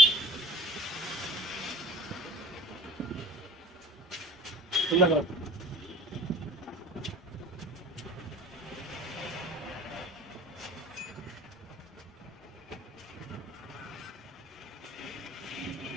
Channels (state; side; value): normal; both; correlation 0.47